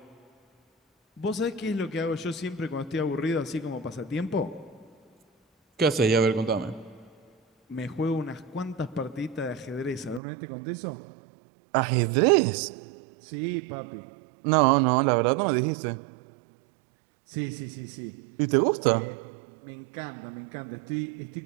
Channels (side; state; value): left; drops out; at 10.2 s